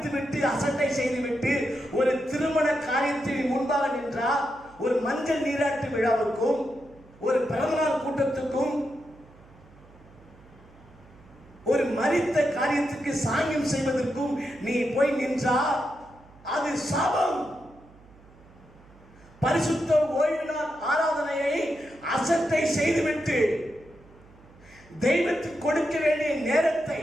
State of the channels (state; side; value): noise; right; hum, 25 dB below the sound